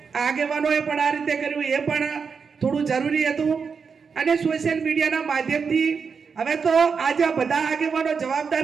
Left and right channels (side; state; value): left; quieter; 5.7 dB